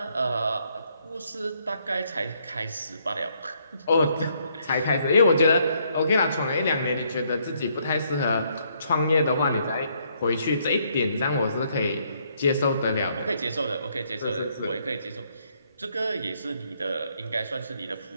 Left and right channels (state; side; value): inverted; both; correlation -0.71